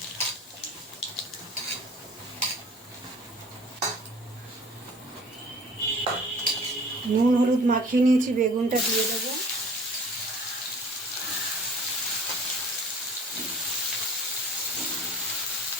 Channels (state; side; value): normal; both; correlation 0.48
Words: নুন হলুদ মাখিয়ে নিয়েছি, বেগুনটা দিয়ে দেবো।